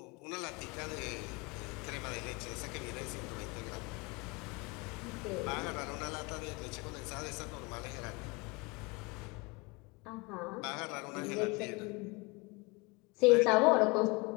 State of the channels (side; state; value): right; quieter; 26.5 dB